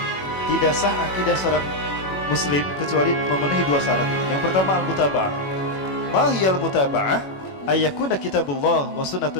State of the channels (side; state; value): right; late; 21 ms